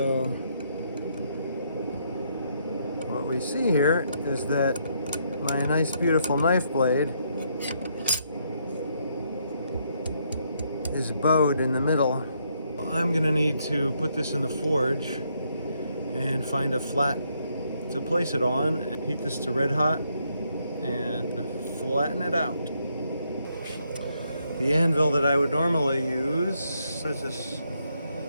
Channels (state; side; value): inverted; both; correlation -0.75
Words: what we see here is that my nice beautiful knife blade is bowed in the middle. I'm gonna need to put this in the forge and find a flat to place it on and heat this to red hot and flatten it out. The anvil that I would normally use is this